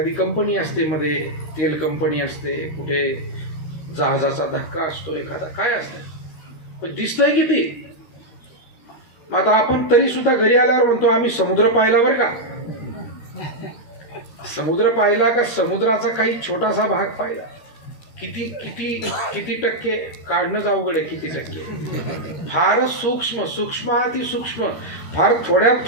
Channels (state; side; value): late; right; 13 ms